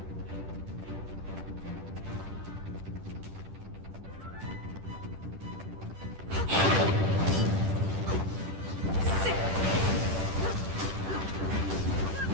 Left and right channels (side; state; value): left; late; 10 ms